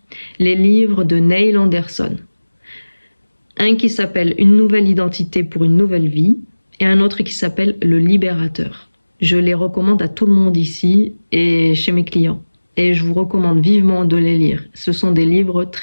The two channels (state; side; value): inverted; both; correlation -1.00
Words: les livres de Neil Anderson. Un qui s'appelle Une nouvelle identité pour une nouvelle vie et un autre qui s'appelle Le Libérateur. Je les recommande à tout le monde ici et chez mes clients. Et je vous recommande vivement de les lire. Ce sont des livres